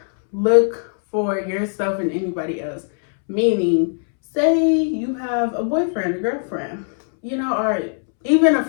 look for yourself in anybody else. Meaning, say you have a boyfriend, a girlfriend, you know, or even a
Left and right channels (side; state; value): right; silent; 66 dB below the other